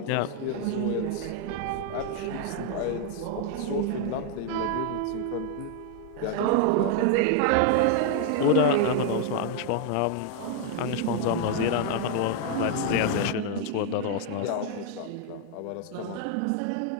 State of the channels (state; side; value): different; both; correlation 0.00